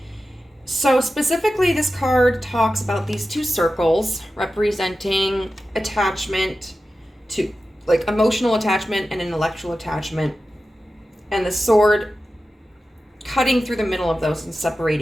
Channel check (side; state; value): both; normal; correlation 0.93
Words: So specifically, this card talks about these 2 circles representing attachment to, like, emotional attachment and intellectual attachment, and the sword cutting through the middle of those and